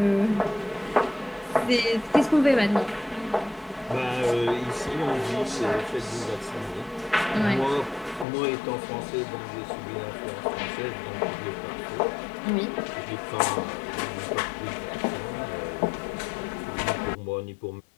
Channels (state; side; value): drops out; right; at 8.2 s